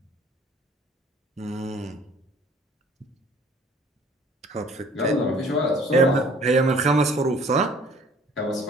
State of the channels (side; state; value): both; normal; correlation 0.53